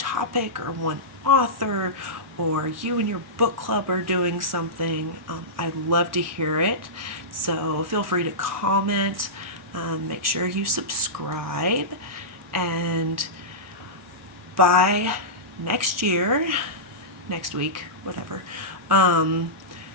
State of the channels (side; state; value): both; normal; correlation -0.16